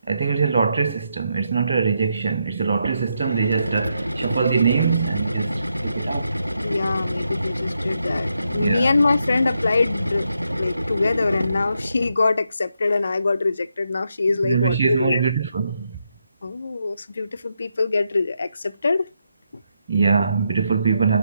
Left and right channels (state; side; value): inverted; both; correlation -0.82